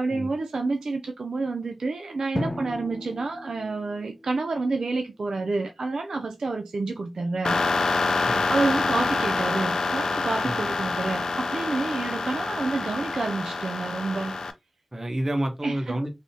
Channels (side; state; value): both; normal; correlation 0.91